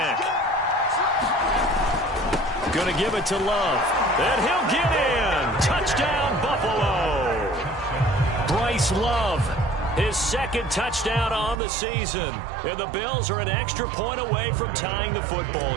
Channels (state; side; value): drops out; left; at 11.6 s